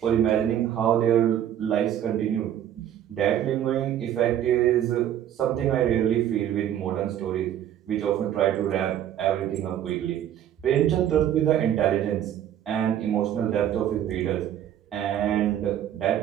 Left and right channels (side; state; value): left; quieter; 10.7 dB